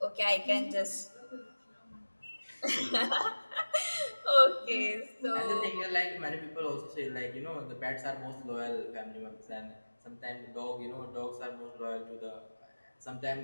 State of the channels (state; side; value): inverted; both; correlation -1.00